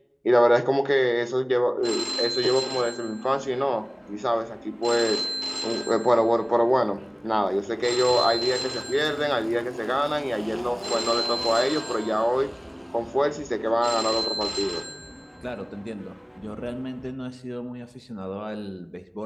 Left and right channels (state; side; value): identical; both; correlation 1.00